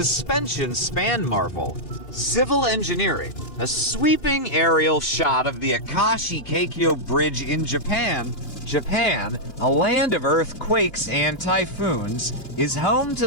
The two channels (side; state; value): right; late; 2.7 ms